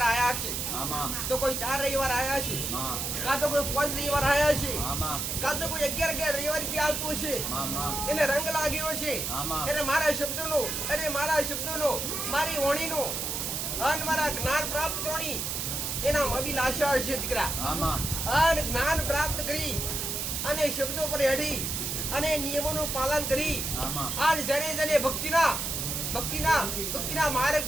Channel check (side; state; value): right; noise; hiss, 2 dB below the sound